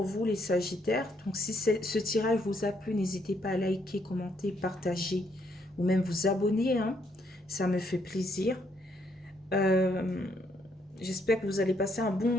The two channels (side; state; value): both; normal; correlation 0.72